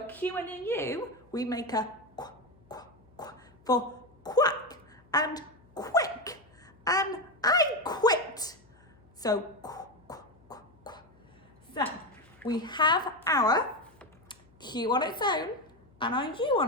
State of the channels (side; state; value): left; noise; hum, 29 dB below the sound